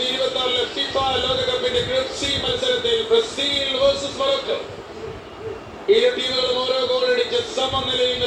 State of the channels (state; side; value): identical; both; correlation 1.00